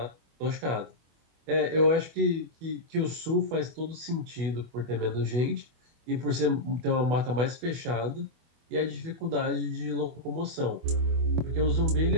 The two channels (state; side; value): late; left; 24 ms